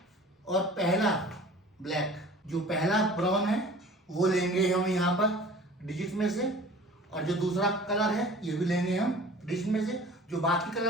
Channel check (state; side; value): normal; both; correlation 0.44